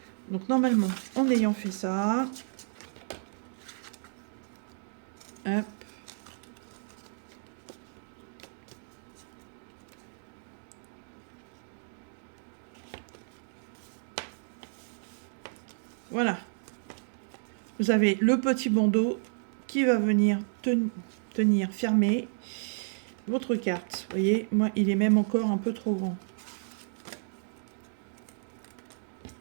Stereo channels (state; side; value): silent; left; digital silence